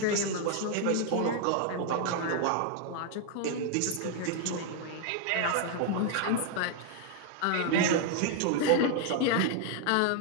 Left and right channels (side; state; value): both; different; correlation 0.00